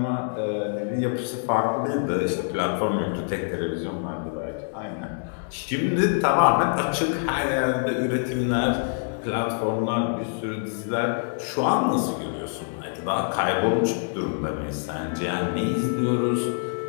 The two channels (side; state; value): right; silent; digital silence